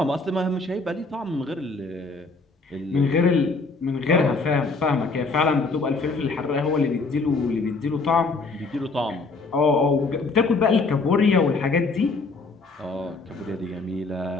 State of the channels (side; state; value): right; quieter; 3.8 dB